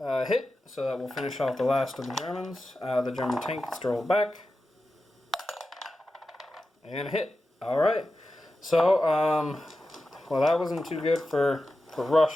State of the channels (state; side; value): normal; both; correlation 0.92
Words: Hit, so that will finish off the last of the Germans. The German tank gets to roll back. And a hit. Alright. So, well, that wasn't too good for